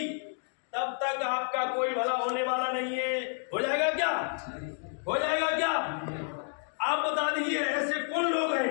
तब तक आपका कोई भला होने वाला नहीं है। हो जाएगा क्या? हो जाएगा क्या? आप बता दीजिए ऐसे कौन लोग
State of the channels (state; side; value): silent; right; 58 dB below the other